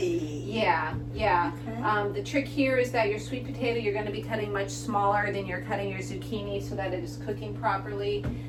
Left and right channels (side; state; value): both; identical; correlation 1.00